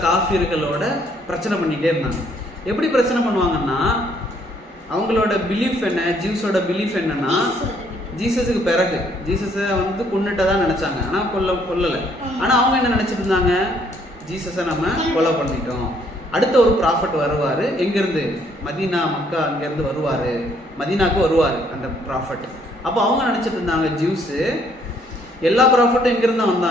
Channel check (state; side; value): normal; both; correlation 0.66